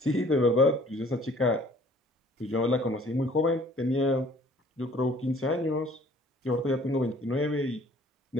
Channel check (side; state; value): both; normal; correlation 0.54